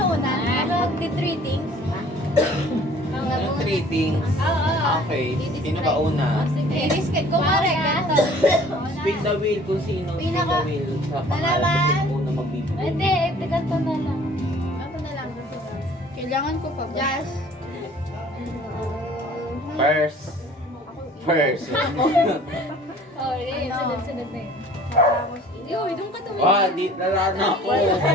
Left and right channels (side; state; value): both; normal; correlation 0.52